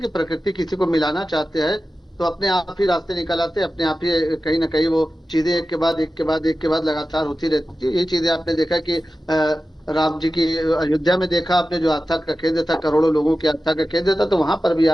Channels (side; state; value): both; normal; correlation 0.94